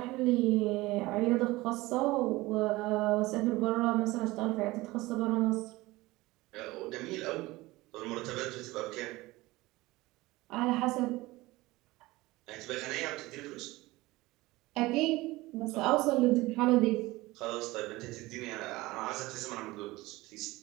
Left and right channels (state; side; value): quieter; left; 20.0 dB